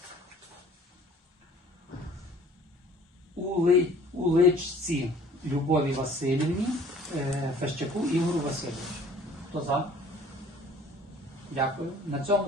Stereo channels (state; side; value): normal; both; correlation 0.52